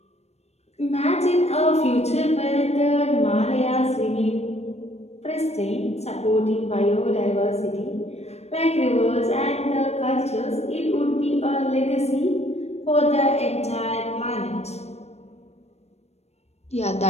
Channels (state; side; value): late; right; 0.31 ms